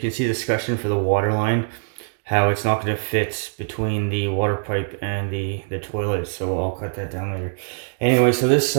see the escutcheon for the water line, how it's not going to fit between the water pipe and the toilet, so I'll cut that down later. Anyway, so this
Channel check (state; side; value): silent; left; digital silence